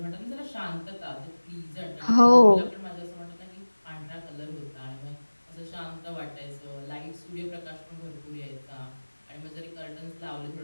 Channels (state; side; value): inverted; both; correlation -1.00